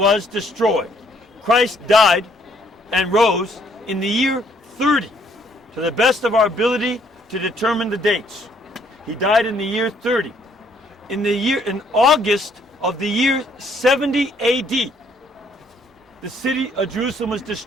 destroyed. Christ died and rose in the year 30, to the best of our ability to determine the dates. He died in the year 30. In August of the year 70 AD, the city of Jerusalem was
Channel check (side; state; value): both; normal; correlation 0.66